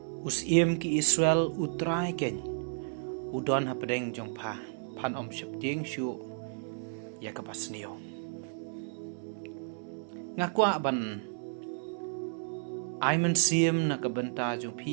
Usiem ki Israel utrai ken udon hapedeng jong pa pan om shep ding shu ya kapasnio ngakwa ban aiman siem na kabenta jong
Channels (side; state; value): left; silent; digital silence